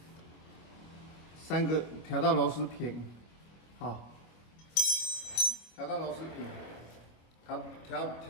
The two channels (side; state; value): right; late; 25 ms